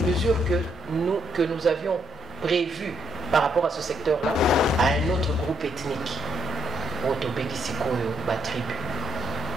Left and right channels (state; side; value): normal; both; correlation 0.75